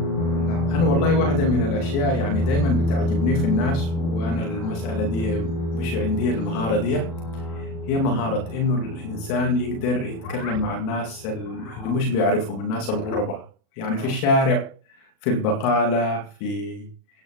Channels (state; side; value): late; right; 36 ms